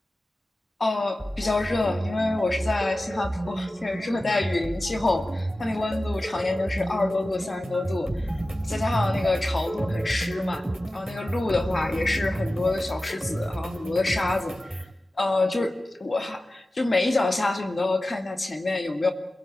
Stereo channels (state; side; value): normal; both; correlation 0.95